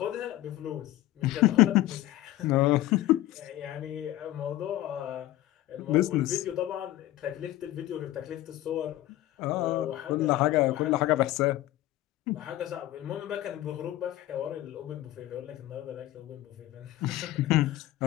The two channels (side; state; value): right; quieter; 15.2 dB